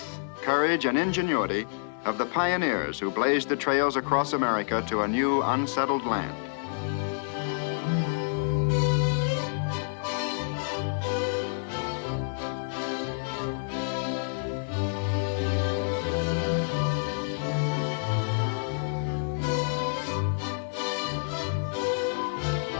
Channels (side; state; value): right; silent; digital silence